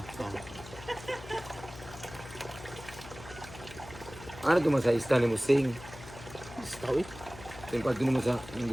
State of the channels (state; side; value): noise; left; hum, 15 dB below the sound